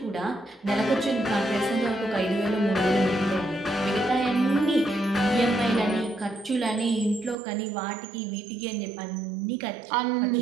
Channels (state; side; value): drops out; left; at 7.4 s